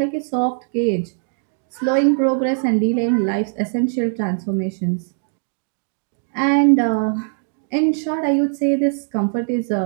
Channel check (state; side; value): silent; left; digital silence